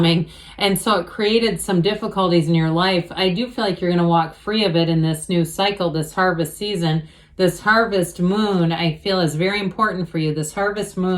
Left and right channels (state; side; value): identical; both; correlation 1.00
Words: and so it created some difficulties in your life. I do feel like you're going to walk free of it in this new cycle, this harvest season. This harvest moon, I feel, is very important for you, this harvest